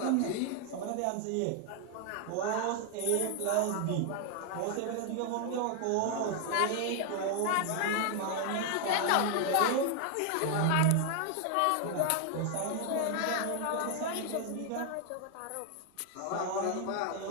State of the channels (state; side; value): different; both; correlation 0.00